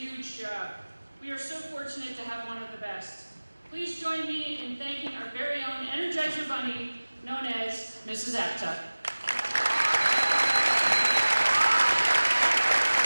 job. We are so fortunate to have one of the best. Please join me in thanking our very own Energizer Bunny, known as Mrs. Aptuck.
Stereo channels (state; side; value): inverted; both; correlation -1.00